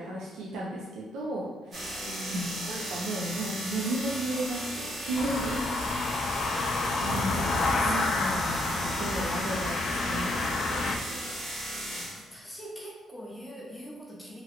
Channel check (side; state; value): both; normal; correlation 0.73